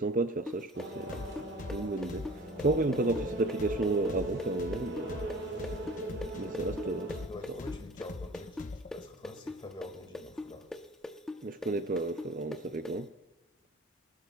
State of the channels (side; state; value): both; normal; correlation 0.44